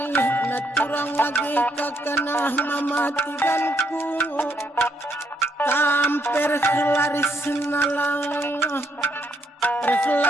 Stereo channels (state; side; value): normal; both; correlation 0.75